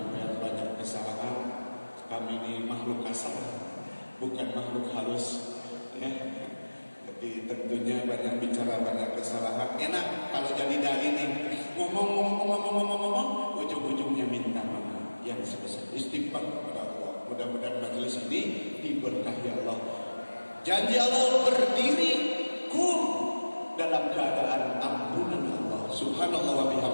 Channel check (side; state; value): both; inverted; correlation -1.00